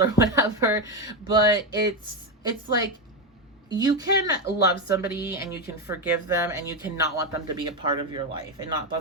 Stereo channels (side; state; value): both; normal; correlation 0.10